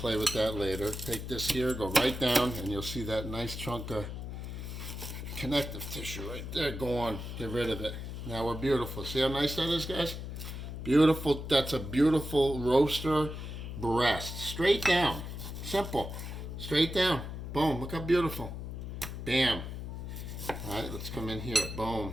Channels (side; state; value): left; noise; hum, 7 dB below the sound